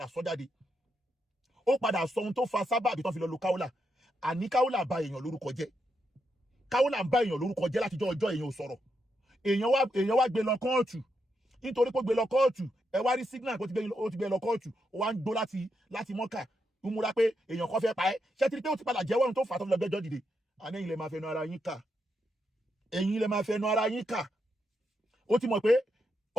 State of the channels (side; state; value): both; normal; correlation 0.82